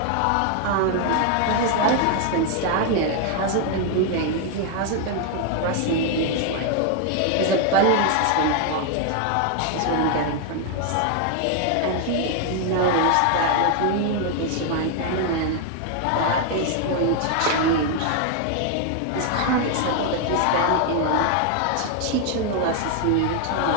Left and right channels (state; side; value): different; both; correlation 0.00